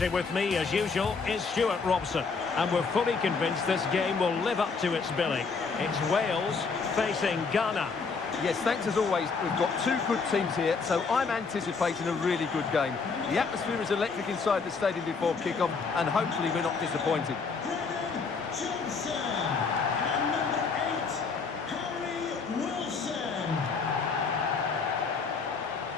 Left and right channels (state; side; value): quieter; right; 4.9 dB